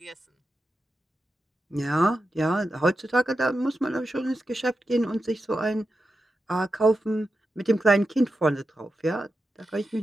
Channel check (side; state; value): both; normal; correlation 0.89